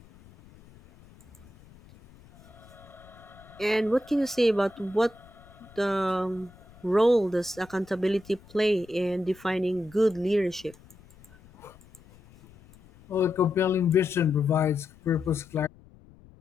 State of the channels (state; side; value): noise; left; rumble, 24 dB below the sound